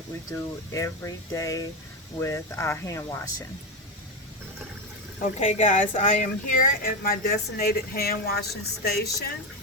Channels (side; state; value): both; normal; correlation 0.13